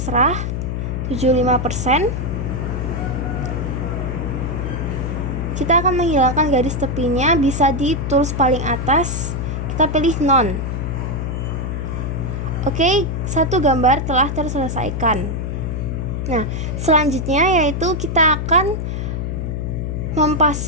75%. Kita akan menghilangkan garis tepinya, bisa di tools paling atas, kita pilih none. Oke, satu gambar telah terselesaikan. Nah, selanjutnya yaitu kita akan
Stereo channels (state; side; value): noise; left; hum, 2 dB below the sound